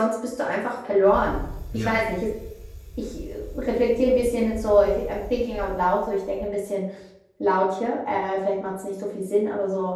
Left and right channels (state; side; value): identical; both; correlation 1.00